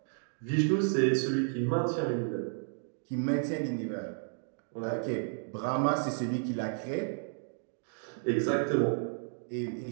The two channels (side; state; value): left; silent; digital silence